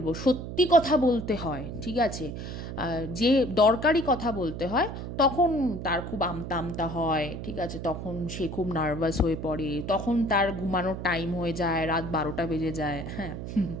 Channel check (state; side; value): noise; right; hum, 7 dB below the sound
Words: সত্যি কথা বলতে হয়, ঠিক আছে, যে দরকারি কথা বলতে হয়, তখন তার খুব আমতা আমতা হয়, ঠিক আছে, তখন সে খুব নার্ভাস হয়ে পড়ে, তখন তার ঘুমানোর টাইম হয়ে যায়, রাত 12টা বেজে যায়। হ্যাঁ,